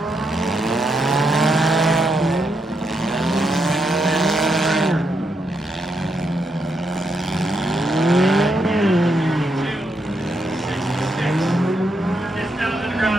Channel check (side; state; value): both; normal; correlation 0.80